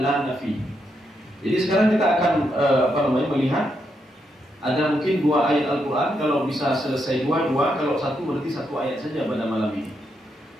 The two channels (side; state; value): both; normal; correlation 0.81